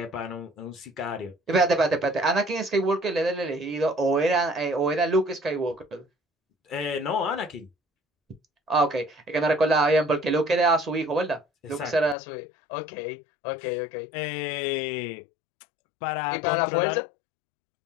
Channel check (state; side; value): drops out; right; at 12.2 s